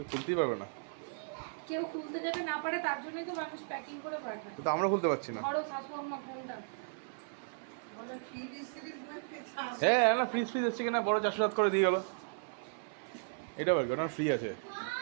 খুলতেই পারবে না। কেউ খুলতে যাতে না পারে তার জন্যই তো মানুষ প্যাকিং করে পাঠায়। তো আমরা খুলতে পারছি না। বড় শাশু আম্মা ফোনটা বলে ফ্রিজ সিরিজ হ্যাঁ না, ফ্রিজ এসছে কিনা বড় 407 করে দিয়ে গেল। এটা বল ওটা ফ্রি আছে।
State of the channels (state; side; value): silent; left; 54 dB below the other